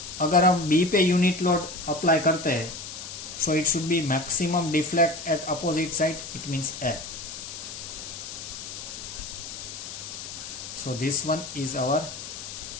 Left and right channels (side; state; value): left; noise; hiss, 10 dB below the sound